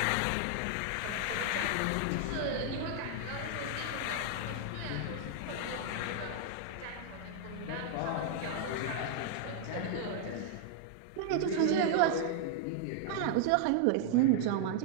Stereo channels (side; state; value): both; different; correlation 0.00